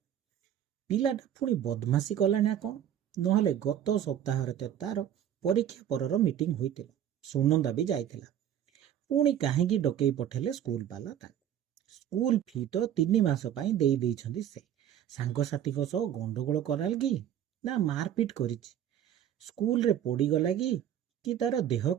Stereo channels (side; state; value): left; quieter; 10.3 dB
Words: पिलाटा पुणी बदमाशी कला ना कौन नहले गत सप्ताह तार परीक्षा परर मीटिंग होइतिला सुनंदा भी जाइतिला पुणी काहेकी डकई पठेले स्कूल वाला स्कूल फी तो 3 मास पई देई देइछंदी से सांगसाथी को सह गंडगोल कराल कि ना मारपीट करिछि स्कूल रे पड़ी गला कि तार देह